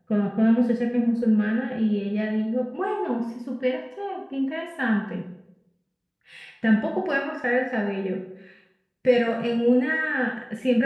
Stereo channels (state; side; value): identical; both; correlation 1.00